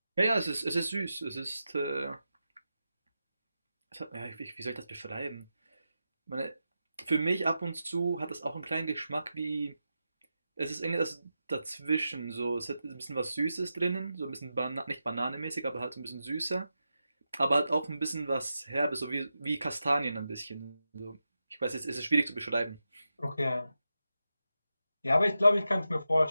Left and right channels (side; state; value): both; inverted; correlation -0.90